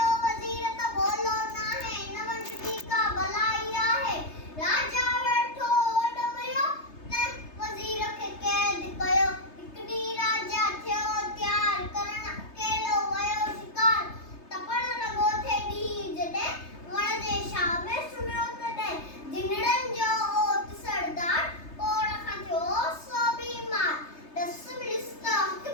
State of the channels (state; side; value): late; right; 3.3 ms